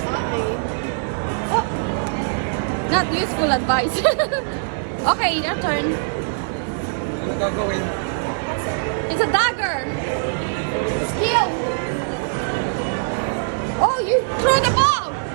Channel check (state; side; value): silent; left; digital silence